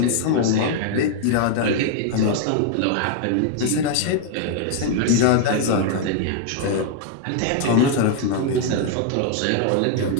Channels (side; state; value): both; different; correlation 0.00